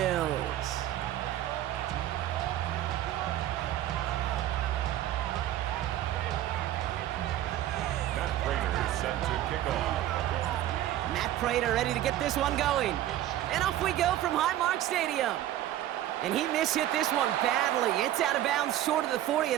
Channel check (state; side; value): quieter; left; 13.1 dB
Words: Matt Prater set to kick off. Matt Prater ready to get this one going. And off we go from Highmark Stadium. And he mishit this one badly. It's out of bounds short of the 40,